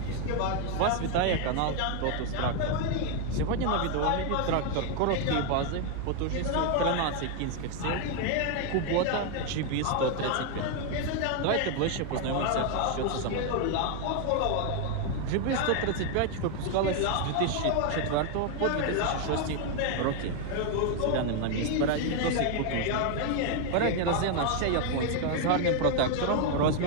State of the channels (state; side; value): different; both; correlation 0.01